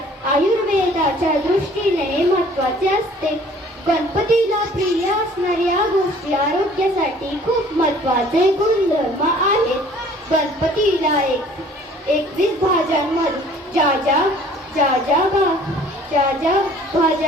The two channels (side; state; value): both; normal; correlation 0.53